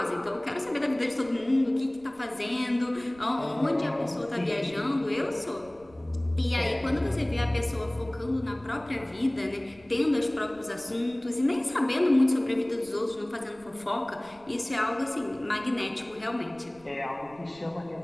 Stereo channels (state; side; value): noise; right; rumble, 26 dB below the sound